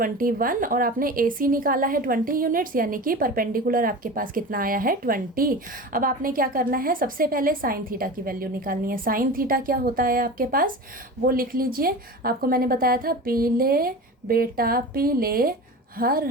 और आपने ए सी निकाला है 20 यूनिट्स यानी कि परपेंडिकुलर आपके पास कितना आया है 20। अब आपने क्या करना है, सबसे पहले साइन थीटा की वैल्यू निकालनी है। साइन थीटा क्या होता है आपके पास, वो लिख लीजिए। आपको मैंने बताया था पीले बेटा पीले हर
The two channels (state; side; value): normal; both; correlation 0.32